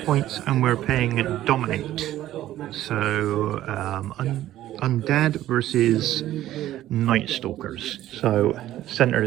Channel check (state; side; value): quieter; left; 13.6 dB